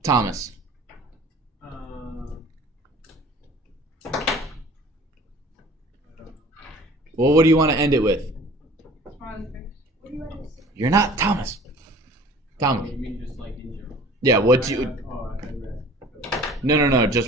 Thomas? Well, what do you want to end it with? Smiley face. You're not Thomas. Thomas. You mean just like in general? Yeah, what do you... No. Just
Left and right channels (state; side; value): normal; both; correlation 0.47